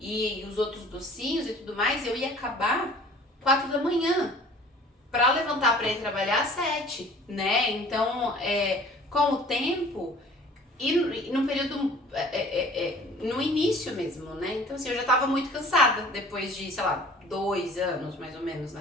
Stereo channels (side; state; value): both; normal; correlation 0.49